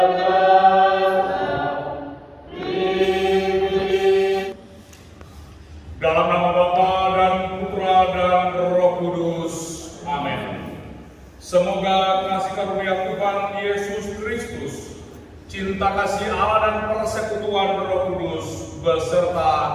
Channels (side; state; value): both; identical; correlation 1.00